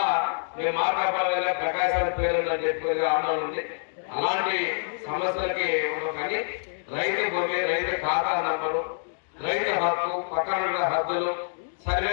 మేము మాట్లాడాలి ప్రకాశాల పేరు అని చెప్పి ఆందోళన ఉంది. అలాంటి సమస్యలకి ఉండవు కానీ రైతు భూమి, రైతు ఖాతా నంబరు, రైతు హక్కు, పక్కన హద్దులు,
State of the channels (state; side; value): silent; right; digital silence